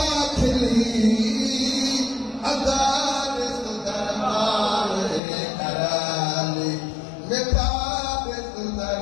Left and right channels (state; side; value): drops out; right; at 5.2 s